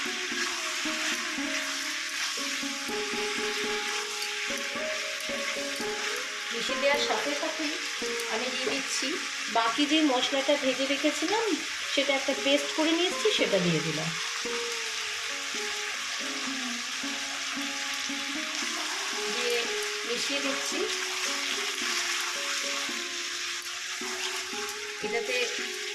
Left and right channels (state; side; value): identical; both; correlation 1.00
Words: মিশিয়ে দেওয়ার সাথে সাথে আমি দিয়ে দিচ্ছি বাকি যে মশলাটা ভেজে রেখেছিলাম, সেটা একটা পেস্ট করে নিয়েছি, সেটা দিয়ে দিলাম। দিয়ে মিশিয়ে দিচ্ছি। এটাতে